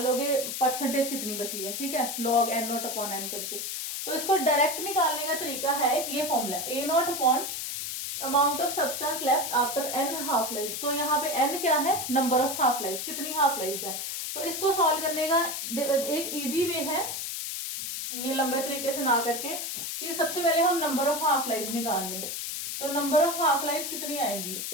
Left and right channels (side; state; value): left; noise; hiss, 4 dB below the sound